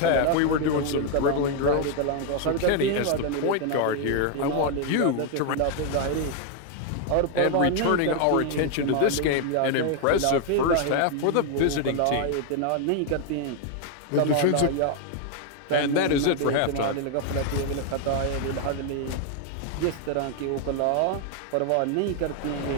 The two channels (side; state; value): both; different; correlation 0.00